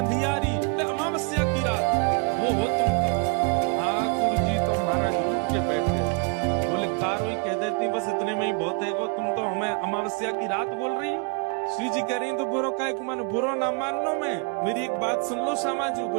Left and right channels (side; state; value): left; quieter; 35.2 dB